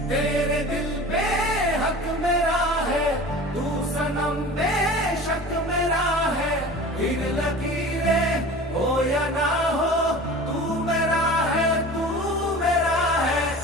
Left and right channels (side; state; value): both; normal; correlation 0.38